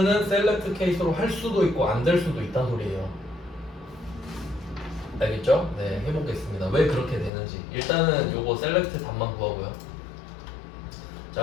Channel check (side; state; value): right; drops out; at 7.3 s